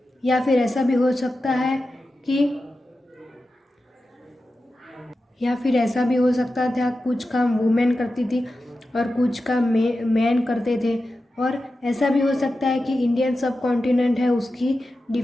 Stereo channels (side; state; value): both; normal; correlation 0.92